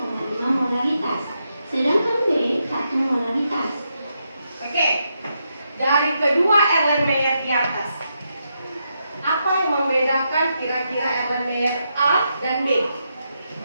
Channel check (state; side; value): inverted; both; correlation -0.82